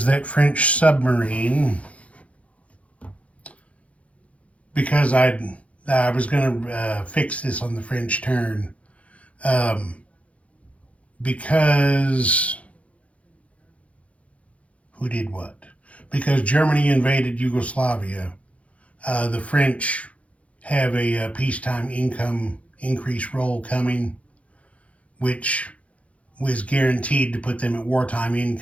that French submarine, because I was going to fix this on the French turn, because who did what? Because Germany invaded Yugoslavia, the French have a peacetime income increase roll coming, which was guaranteed to put them at wartime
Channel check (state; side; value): late; right; 0.064 ms